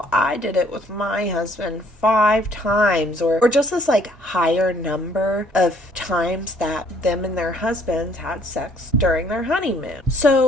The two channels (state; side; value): normal; both; correlation 0.61